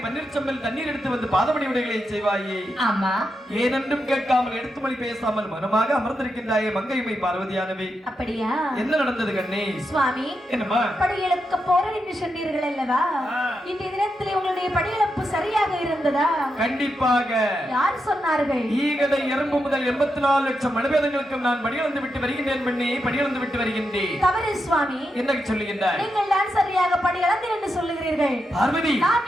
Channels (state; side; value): normal; both; correlation 0.85